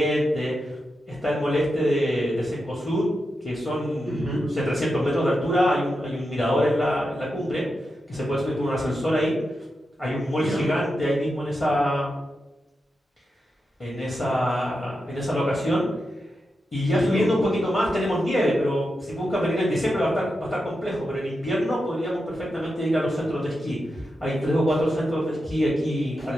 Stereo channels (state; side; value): normal; both; correlation 0.88